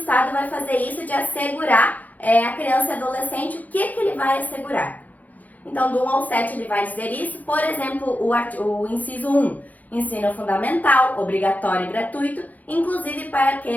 vai fazer isso de assegurar a criança e adolescente, o que ele vai assegurar. Então, do 1 ao 7 ele vai dizer isso, por exemplo, o inciso 1, ensino fundamental, obrigatório e gratuito, inclusive para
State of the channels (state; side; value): late; right; 0.077 ms